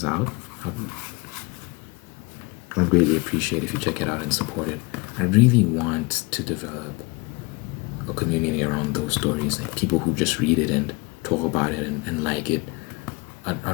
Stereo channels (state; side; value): quieter; right; 26.6 dB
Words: out, I'd greatly appreciate if you check it out and support it. I really want to develop a community around those stories, like people who just read it and talk about it and like it.